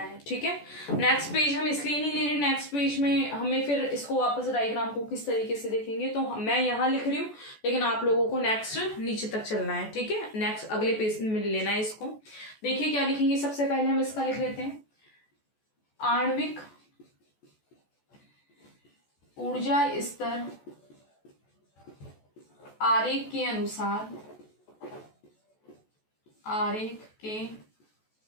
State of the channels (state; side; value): late; right; 14 ms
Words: ठीक है। नेक्स्ट पेज हम इसलिए नहीं ले रहे, नेक्स्ट पेज में हमें फिर इसको वापस डायग्राम को किस तरीके से देखेंगे, तो मैं यहाँ लिख रही हूँ लेकिन आप लोगों को नेक्स्ट नीचे तक चलना है, ठीक है। नेक्स्ट अगले पेज में लेना है इसको। देखिए क्या लिखेंगे, सबसे पहले हम इसका लिख लेते हैं, आणविक ऊर्जा स्तर आरेख के अनुसार, आरेख के